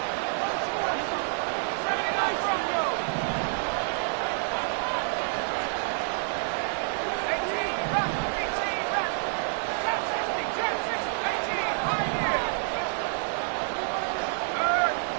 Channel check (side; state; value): left; silent; 59 dB below the other